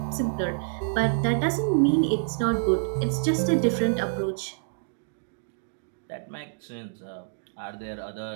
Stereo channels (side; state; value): left; silent; digital silence